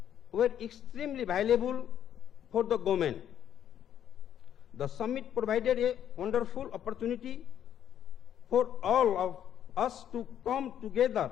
were extremely valuable for the government. The summit provided a wonderful opportunity for all of us to come together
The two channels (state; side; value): quieter; right; 10.0 dB